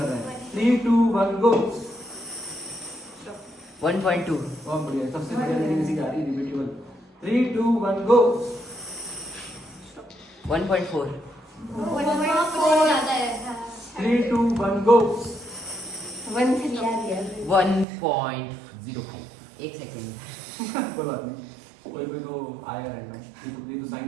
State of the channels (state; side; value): drops out; left; at 17.9 s